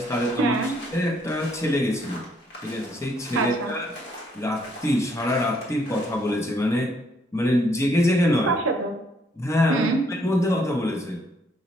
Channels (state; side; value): normal; both; correlation 0.69